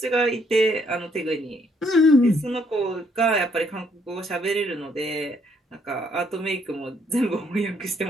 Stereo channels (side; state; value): both; normal; correlation 0.69